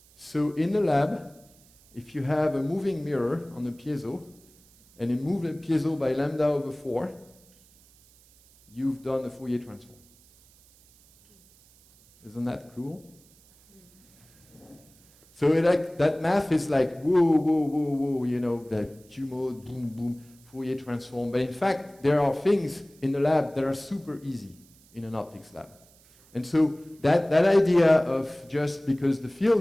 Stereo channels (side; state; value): right; noise; hiss, 28 dB below the sound